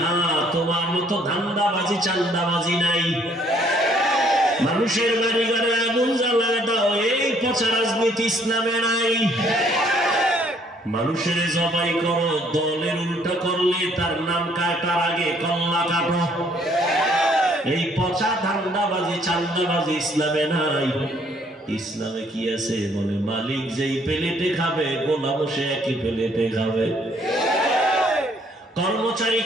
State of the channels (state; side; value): normal; both; correlation 0.64